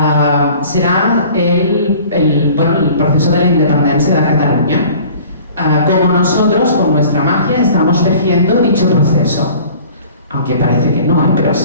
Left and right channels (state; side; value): inverted; both; correlation -0.47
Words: será el proceso de la independencia de Cataluña. Como nosotros, con nuestra magia, estamos tejiendo dicho proceso. Aunque parece que no, pero